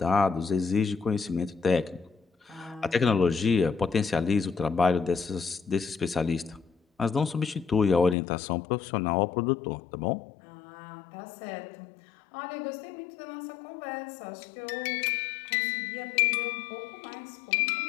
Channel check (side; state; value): right; drops out; at 8.2 s